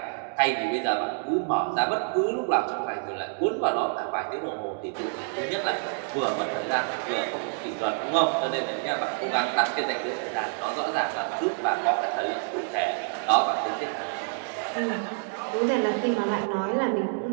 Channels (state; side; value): silent; left; 57 dB below the other